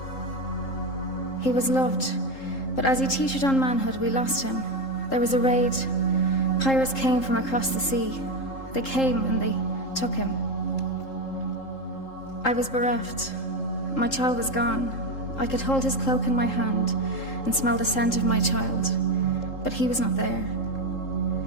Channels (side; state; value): right; late; 3.8 ms